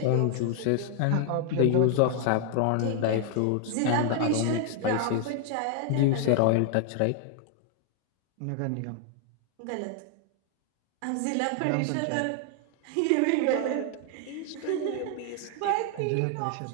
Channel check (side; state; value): both; different; correlation 0.00